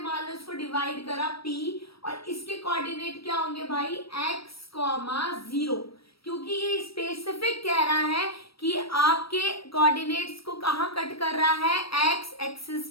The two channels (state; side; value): late; right; 0.75 ms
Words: लो इसको डिवाइड करा p और इसके कोऑर्डिनेट क्या होंगे भाई, x, 0, क्योंकि ये स्पेसिफिक कह रहा है कि आपके कोऑर्डिनेट्स को कहां कट कर रहा है, एक्स एक्सिस